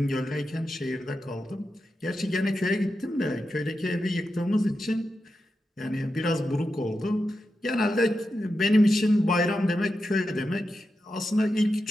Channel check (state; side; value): normal; both; correlation 0.89